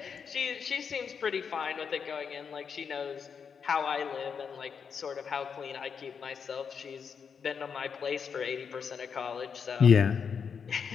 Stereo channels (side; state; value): right; quieter; 6.5 dB